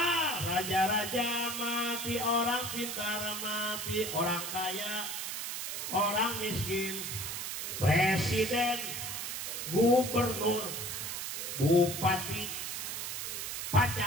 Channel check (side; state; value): right; noise; hiss, 4 dB below the sound